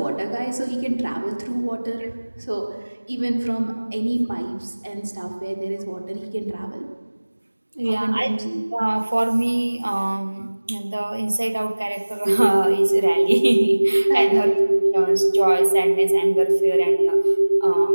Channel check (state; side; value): inverted; both; correlation -1.00